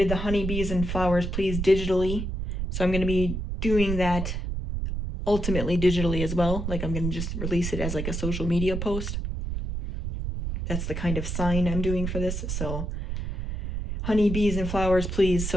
the honeybees and flowers please digitally, so I'm going to be doing that ultimately digitally as well. Like I'm going to just release it as like a social media post. That's the kind of sign I'm doing for this. So honeybees and flowers please.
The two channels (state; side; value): noise; right; rumble, 3 dB below the sound